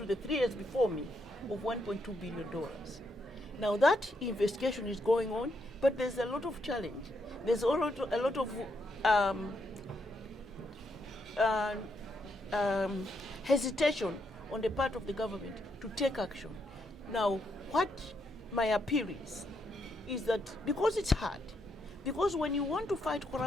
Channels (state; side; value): normal; both; correlation 0.78